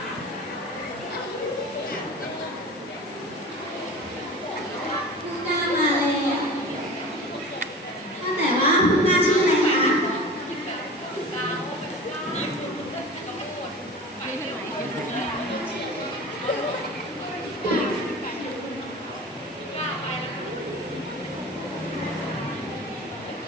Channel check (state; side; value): normal; both; correlation 0.36